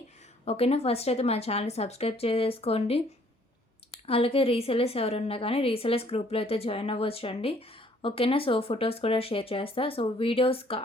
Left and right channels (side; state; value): both; normal; correlation 0.61